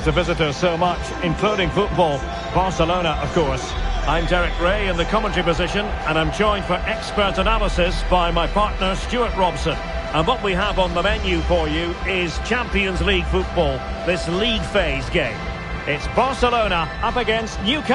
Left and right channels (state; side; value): identical; both; correlation 1.00